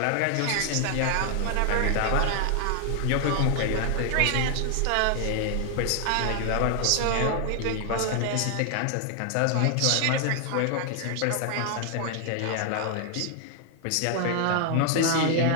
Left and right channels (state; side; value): different; both; correlation 0.00